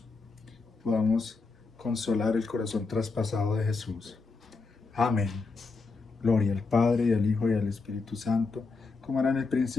podamos consolar el corazón traspasado de Jesús. Amén. Gloria al Padre, y al Hijo, y al Espíritu Santo, como era en el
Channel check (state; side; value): quieter; right; 4.1 dB